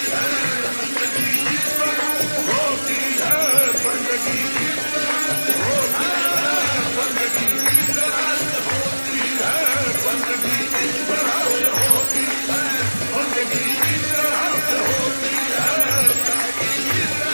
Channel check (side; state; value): both; inverted; correlation -1.00